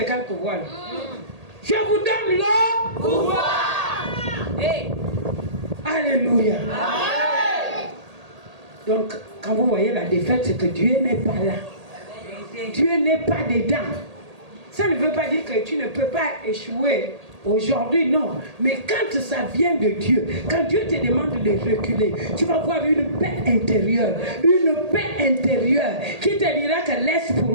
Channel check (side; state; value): left; late; 1.8 ms